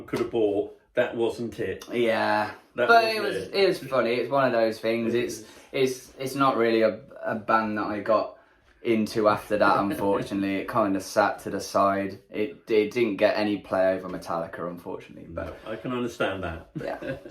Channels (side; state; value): both; identical; correlation 1.00